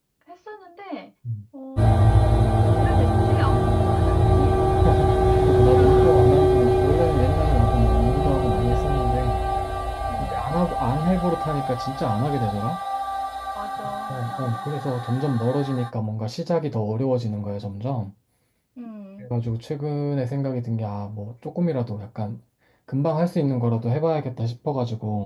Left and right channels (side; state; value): both; identical; correlation 1.00